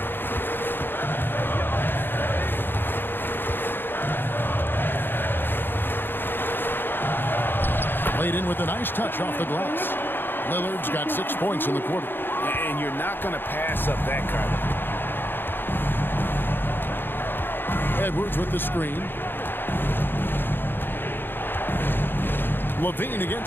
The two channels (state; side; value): late; right; 0.099 ms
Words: Laid in with a nice touch off the glass. Lillard's got 6 points in the quarter. And you're not going to pass up that kind of. Edwards with the screen. Levine